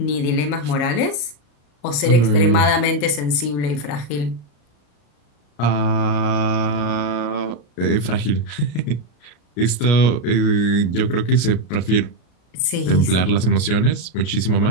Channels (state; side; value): late; right; 34 ms